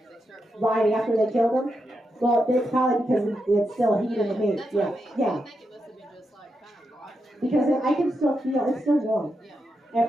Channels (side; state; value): both; normal; correlation 0.85